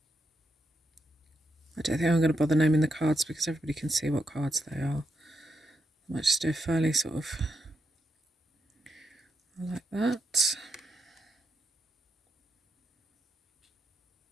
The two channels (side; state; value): both; normal; correlation 0.84